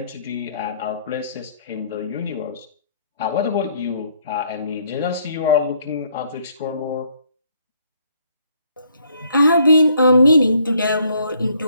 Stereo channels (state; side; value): inverted; both; correlation -0.67